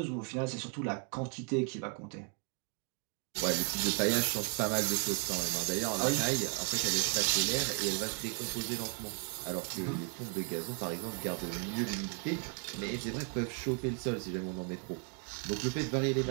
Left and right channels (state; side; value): quieter; left; 39.1 dB